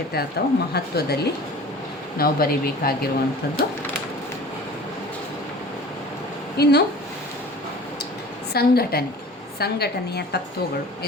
ಅಥವಾ ಮಹತ್ವದಲ್ಲಿ ನಾವು ಬರೀಬೇಕಾಗಿರುವಂಥದ್ದು. ಇನ್ನು ಸಂಘಟನೆಯ ತತ್ವಗಳು.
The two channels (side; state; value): both; normal; correlation 0.42